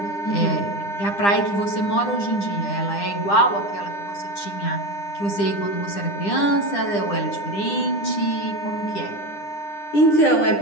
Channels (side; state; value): right; late; 10 ms